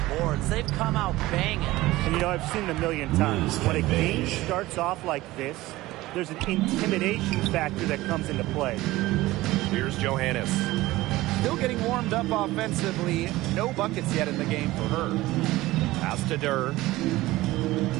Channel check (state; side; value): quieter; left; 18.1 dB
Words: boards. They've come out banging. And you know, I've seen it a million times. When a game starts off like this, there's an intimidation factor that comes into play. Here's Johannes. Still getting warmed up offensively. No buckets yet in the game for her. Pass to Durr.